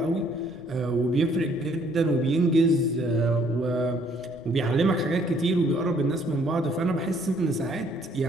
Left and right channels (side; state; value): left; noise; rumble, 26 dB below the sound